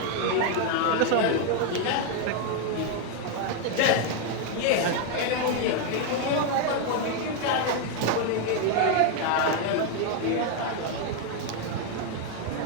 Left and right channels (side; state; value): both; different; correlation 0.01